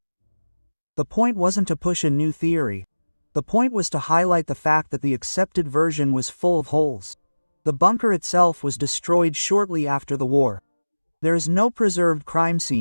The point wasn't to push a new theory. The point was to highlight the fact that the accepted version was full of holes. The bunker itself was destroyed shortly after the war. There is no preserved crime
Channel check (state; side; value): inverted; both; correlation -1.00